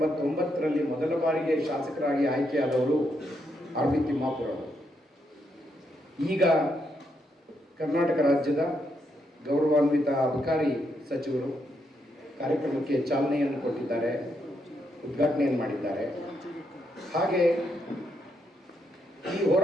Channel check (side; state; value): both; normal; correlation 0.79